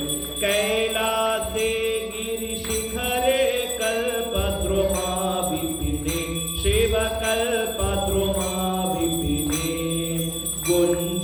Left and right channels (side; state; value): both; identical; correlation 1.00